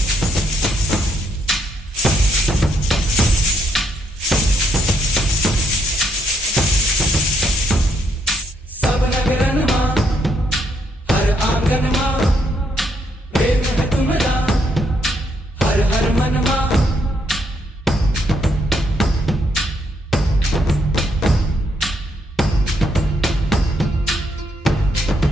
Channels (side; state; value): both; normal; correlation 0.75